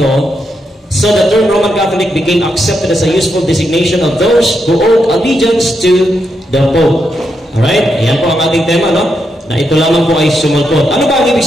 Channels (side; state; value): both; normal; correlation 0.82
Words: so the term Roman Catholic became accepted as a useful designation of those who owed allegiance to the Pope. Alright? Ayan po ang ating tema, no? Na ito lamang po ay sumulpot. Ano ba ang ibig